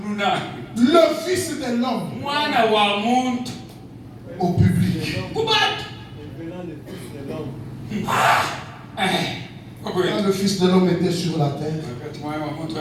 le Fils de l'homme au public. Quand le Fils de l'homme était sur la terre,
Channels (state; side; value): identical; both; correlation 1.00